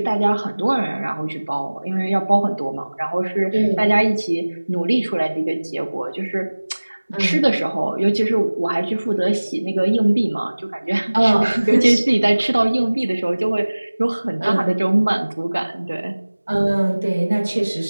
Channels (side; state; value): both; inverted; correlation -1.00